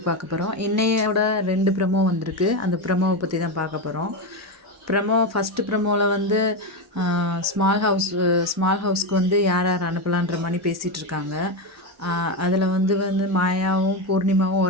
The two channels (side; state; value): both; normal; correlation 0.12